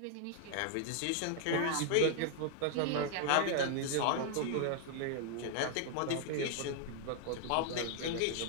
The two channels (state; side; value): different; both; correlation 0.00